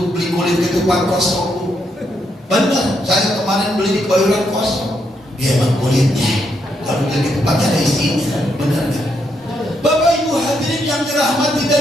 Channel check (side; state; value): both; normal; correlation 0.78